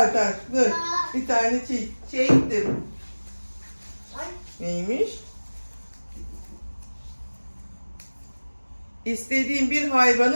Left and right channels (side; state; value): both; inverted; correlation -1.00